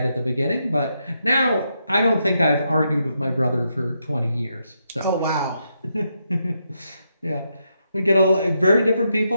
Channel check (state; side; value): inverted; both; correlation -0.81